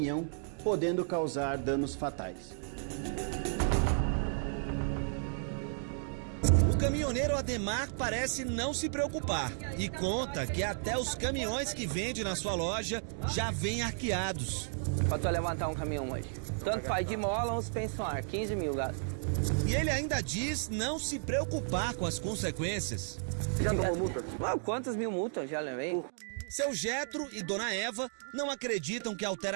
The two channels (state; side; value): silent; left; digital silence